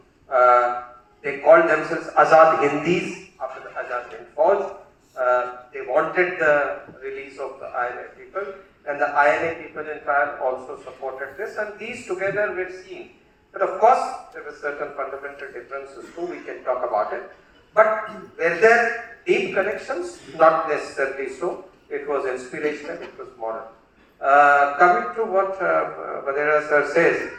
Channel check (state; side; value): identical; both; correlation 1.00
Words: They called themselves Azad Hindis after the Azad Hind Fauj. They wanted the release of the INA people, and the INA people in trial also supported this, and these together were seen. But of course, there were certain fundamental differences too, we can talk about it. But were there deep connections? Not necessarily so. It was inspirational, it was moral. Coming to what Vadera sir says,